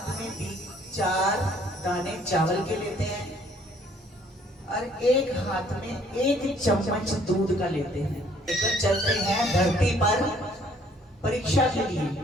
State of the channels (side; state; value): both; normal; correlation 0.61